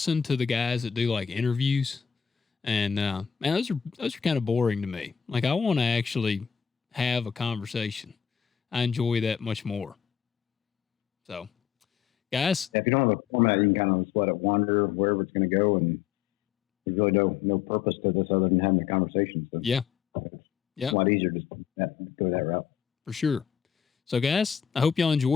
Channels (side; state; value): right; quieter; 8.2 dB